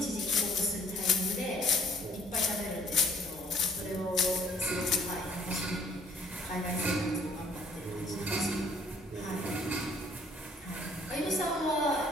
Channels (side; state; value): both; normal; correlation 0.59